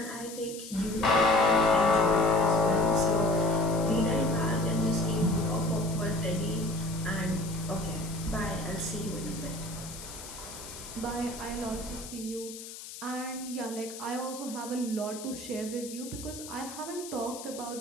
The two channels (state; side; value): noise; left; hiss, 13 dB below the sound